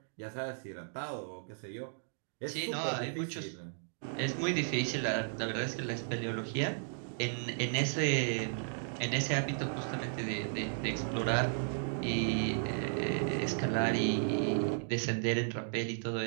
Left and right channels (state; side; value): silent; left; digital silence